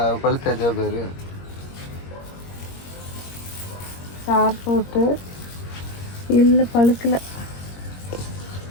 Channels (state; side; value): late; right; 21 ms